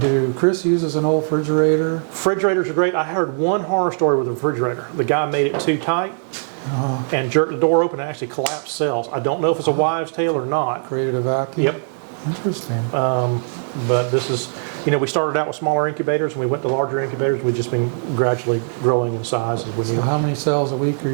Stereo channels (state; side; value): silent; left; digital silence